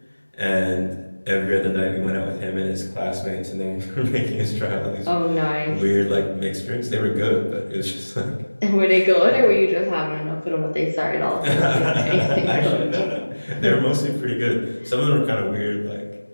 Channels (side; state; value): both; inverted; correlation -1.00